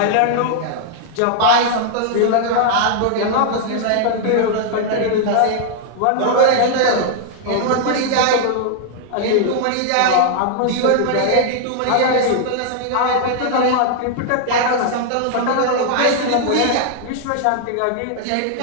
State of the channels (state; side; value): different; both; correlation 0.00